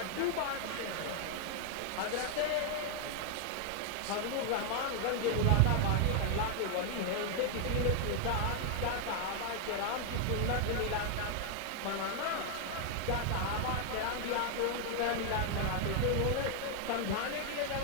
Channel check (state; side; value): different; both; correlation 0.00